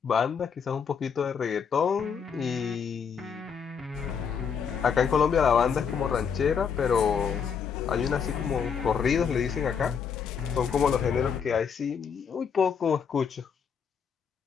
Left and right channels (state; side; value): quieter; right; 6.7 dB